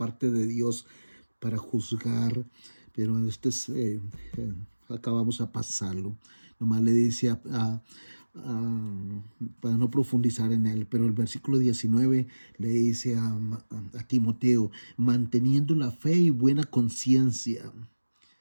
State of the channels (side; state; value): both; inverted; correlation -1.00